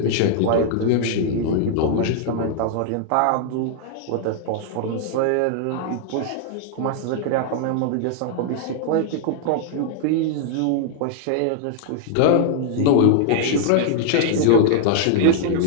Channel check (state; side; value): different; both; correlation 0.00